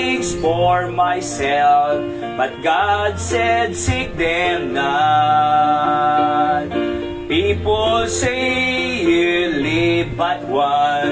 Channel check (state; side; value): identical; both; correlation 1.00